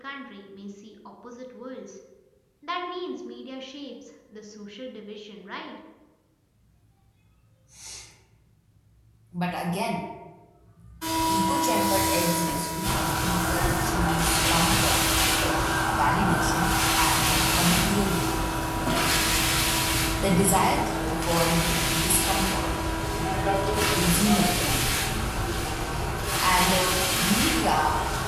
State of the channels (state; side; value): identical; both; correlation 1.00